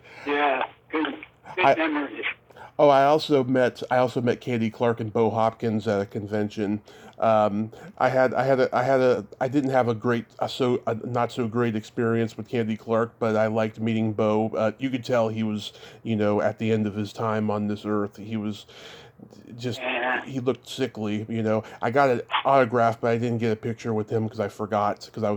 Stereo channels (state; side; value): identical; both; correlation 1.00